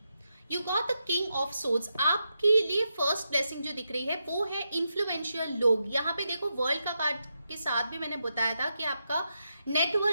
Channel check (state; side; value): inverted; both; correlation -0.85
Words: You got the king of swords. आपके लिए फर्स्ट ब्लेसिंग जो दिख रही है वो है इन्फ्लुएंशियल लोग। यहाँ पे देखो वर्ल्ड का कार्ड के साथ भी मैंने बताया था कि आपका